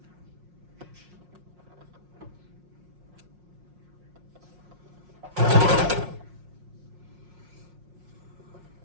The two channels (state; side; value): late; left; 5.6 ms